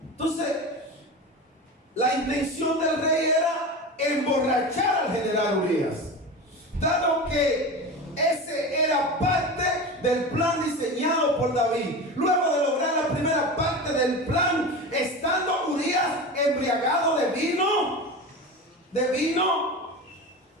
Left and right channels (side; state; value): both; normal; correlation 0.27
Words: Entonces, la intención del rey era emborrachar al general Urías, dado que ese era parte del plan diseñado por David. Luego de lograr la primera parte del plan, estando Urías embriagado de vino,